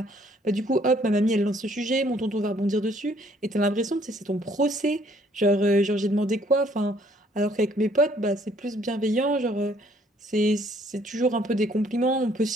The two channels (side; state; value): both; normal; correlation 0.63